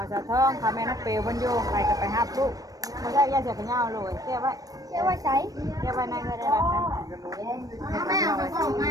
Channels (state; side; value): late; left; 0.18 ms